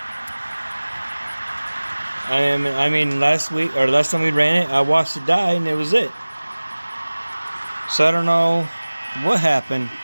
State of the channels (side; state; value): both; inverted; correlation -1.00